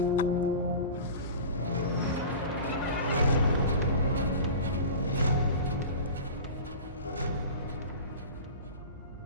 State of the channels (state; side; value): inverted; both; correlation -0.35